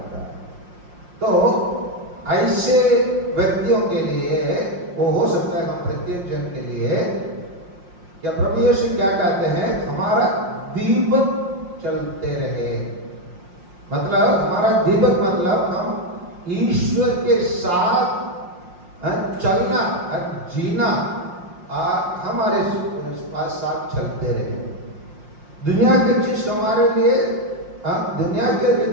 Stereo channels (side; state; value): left; late; 5.7 ms